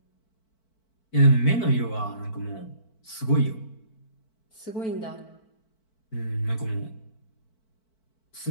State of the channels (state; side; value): late; right; 4.5 ms